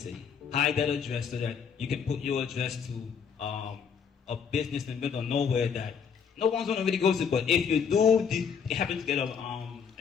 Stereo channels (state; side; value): quieter; right; 6.8 dB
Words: hide that address so that you can put your address to a business in the middle of nowhere that no one's gonna really go to. But if you do happen to get